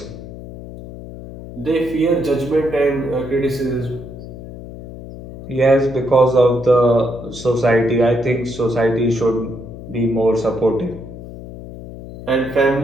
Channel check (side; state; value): left; noise; hum, 13 dB below the sound